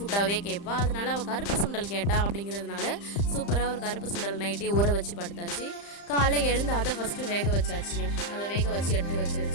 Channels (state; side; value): late; right; 35 ms